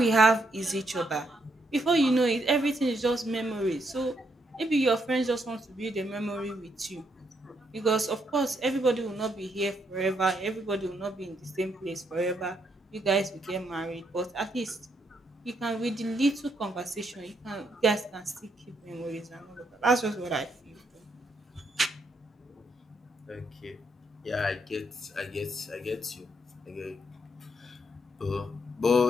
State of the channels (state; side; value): normal; both; correlation 0.76